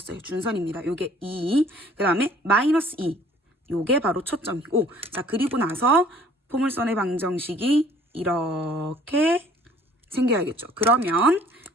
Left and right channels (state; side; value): normal; both; correlation 0.55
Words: 준선입니다. 요게 2. 그 다음에 마이너스 2. 요게 바로 초점이고, 자, 그리고 나서 포물선의 방정식이 이렇게 생겨야겠죠. 그러면